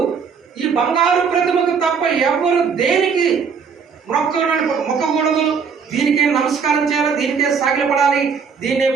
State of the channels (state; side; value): quieter; left; 6.1 dB